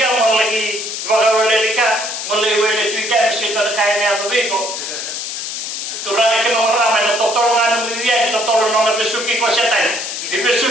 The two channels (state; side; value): noise; left; hiss, 5 dB below the sound